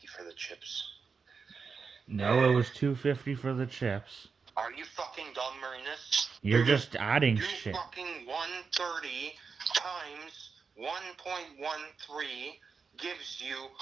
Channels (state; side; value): quieter; left; 5.3 dB